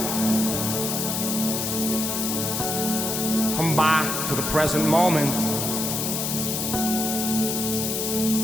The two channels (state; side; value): noise; left; hiss, 1 dB below the sound